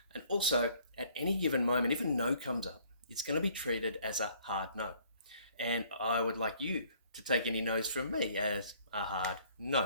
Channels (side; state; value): both; inverted; correlation -0.60